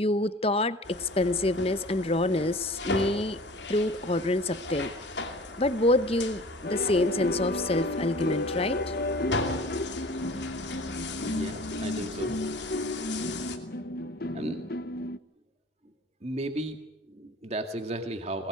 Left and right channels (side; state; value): both; normal; correlation 0.44